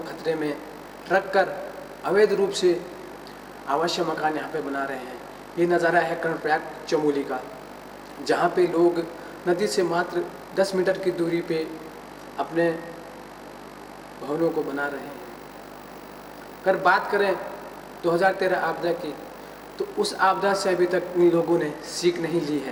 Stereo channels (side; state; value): both; identical; correlation 1.00